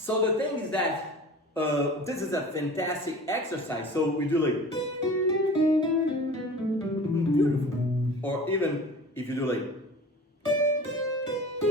thing is that this is a fantastic exercise. So we do like beautiful. Or even if you do like,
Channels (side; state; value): both; normal; correlation 0.40